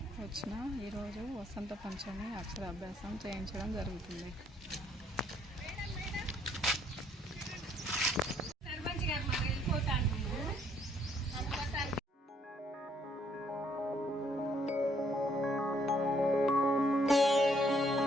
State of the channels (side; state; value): both; normal; correlation 0.67